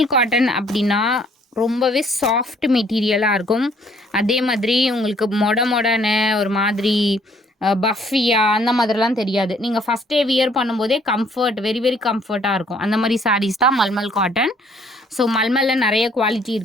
காட்டன் அப்படின்னா ரொம்பவே சாஃப்ட் மெட்டீரியலாக இருக்கும். அதே மாதிரி உங்களுக்கு மொடன்னு ஒரு மாதிரி பஃபியா அந்த மாதிரிலாம் தெரியாது. நீங்கள் ஃபஸ்ட் டே வியர் பண்ணும்போதே வெரி வெரி கம்ஃபர்ட்டாக இருக்கும். அந்த மாதிரி சாரீஸ் தான் மல்மல் காட்டன். ஸோ மல்மலில் நிறைய குவாலிட்டி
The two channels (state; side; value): normal; both; correlation 0.62